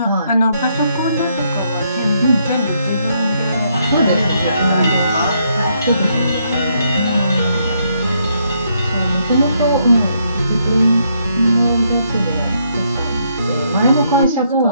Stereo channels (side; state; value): both; inverted; correlation -0.74